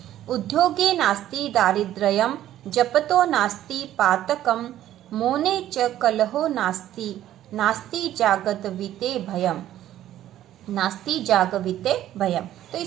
उद्योगे नास्ति दारिद्र्यम जपतो नास्ति पातकम मौने च कलहो नास्ति नास्ति जागविते भयम नास्ति जागविते भयम। तो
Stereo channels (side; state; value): left; quieter; 12.6 dB